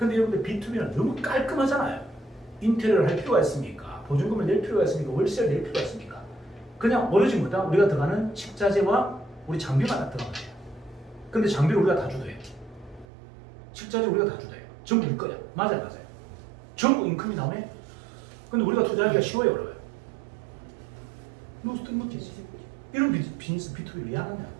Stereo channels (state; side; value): drops out; left; at 13.1 s